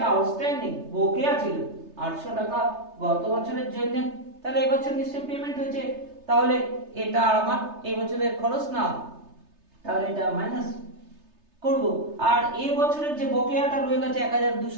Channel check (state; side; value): late; left; 3.3 ms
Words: আউটস্ট্যান্ডিং বকেয়া ছিল 800 টাকা গত বছরের জন্য, তাহলে এই বছর নিশ্চয়ই পেমেন্ট হয়েছে, তাহলে এটা আমার এই বছরের খরচ না, তাহলে এটা মাইনাস করব। আর এই বছরের যে বকেয়াটা রয়ে গেছে